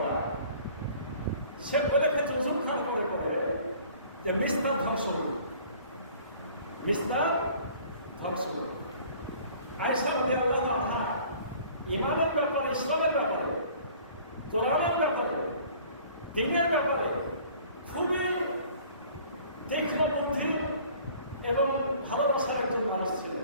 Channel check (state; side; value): inverted; both; correlation -0.51